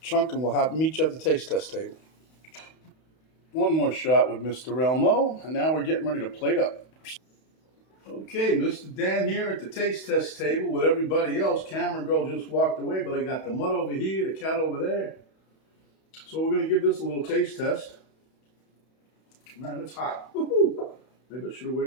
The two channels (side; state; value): right; late; 31 ms